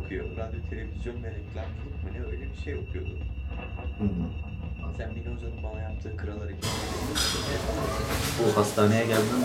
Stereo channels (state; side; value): identical; both; correlation 1.00